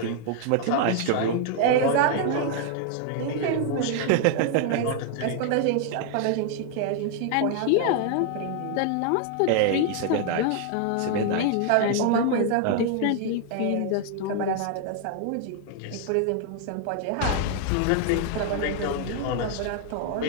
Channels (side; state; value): both; different; correlation 0.00